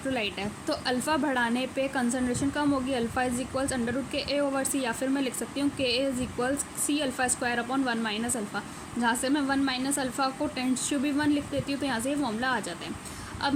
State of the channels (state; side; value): identical; both; correlation 1.00